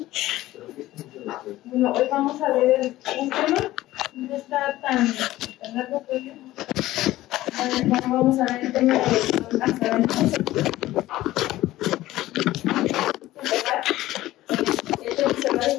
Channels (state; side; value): quieter; right; 16.0 dB